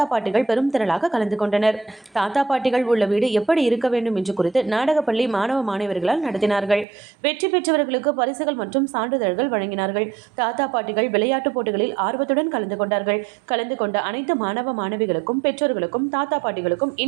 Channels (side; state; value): left; drops out; at 6.9 s